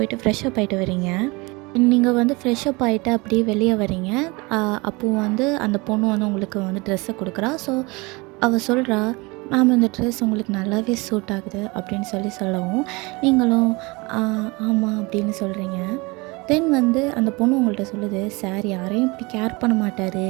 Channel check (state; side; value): quieter; left; 25.6 dB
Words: ஃப்ரெஷ்அப் ஆகிட்டு வரீங்க. நீங்கள் வந்து ஃப்ரெஷ்அப் ஆகிட்டு அப்படியே வெளியே வரீங்க. அப்போது வந்து அந்த பொண்ணு வந்து உங்களுக்கு வந்து ட்ரெஸ்ஸை கொடுக்குறா. ஸோ அவள் சொல்கிறா, மேம் இந்த ட்ரெஸ் உங்களுக்கு நல்லாவே சூட் ஆகுது அப்படின்னு சொல்லவும் நீங்களும் ஆமாம் அப்படின்னு சொல்கிறீங்க. தென் வந்து அந்த பொண்ணு உங்கள்கிட்ட சொல்லுது, சார் யாரையும் இப்படி கேர் பண்ண மாட்டார்,